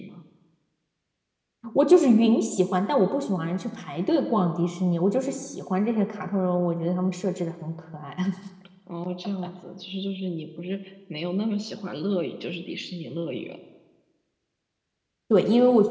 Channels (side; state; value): both; identical; correlation 1.00